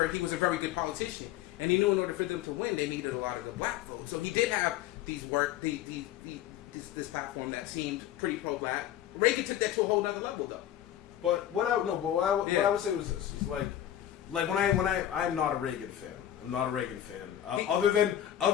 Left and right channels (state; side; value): quieter; right; 11.6 dB